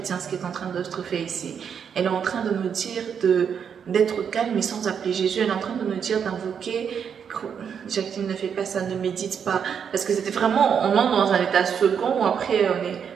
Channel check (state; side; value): quieter; left; 7.4 dB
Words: ce qui est en train d'être fait ici. Elle est en train de nous dire d'être calme et sans appeler Jésus. Elle est en train de nous dire d'invoquer. Jacqueline, ne fais pas ça, ne médite pas. Parce que c'était vraiment, on entre dans un état second où après